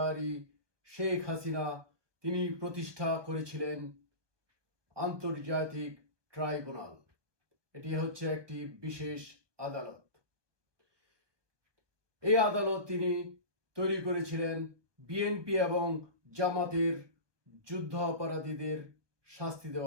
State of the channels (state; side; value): late; left; 1.2 ms